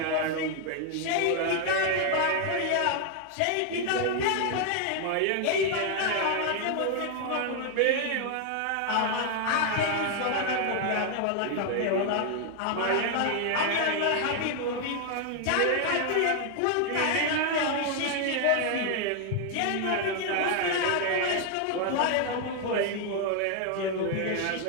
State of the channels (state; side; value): different; both; correlation 0.00